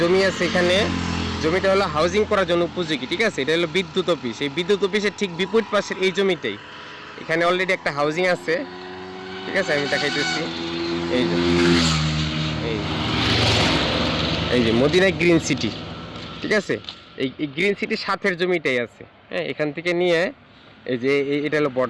আছে এখানে, জমিটা হলো হাউজিং করার জন্য উপযোগী, ঠিক আছে। এটা হলো বিদ্যুৎ অফিস, এই বিদ্যুৎ অফিসের ঠিক বিপরীত পাশের এই জমিটাই, এখানে অলরেডি একটা হাউজিং আছে, ঠিক আছে। আমি দেখাইতেছি, এই যে এই এই যে মদিনা গ্রিন সিটি, ঠিক আছে। এই গ্রিন সিটির সাথের জমিটাই আছে, হ্যাঁ। এখান থেকে নিয়ে এই যে এটা হলো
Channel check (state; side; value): identical; both; correlation 1.00